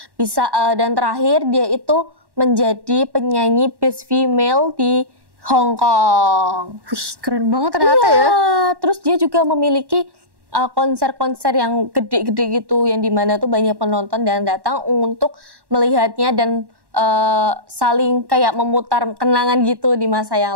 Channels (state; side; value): late; left; 1.1 ms